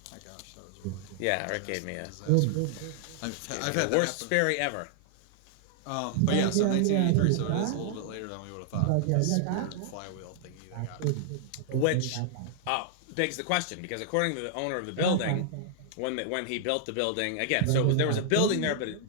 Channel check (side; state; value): both; different; correlation -0.01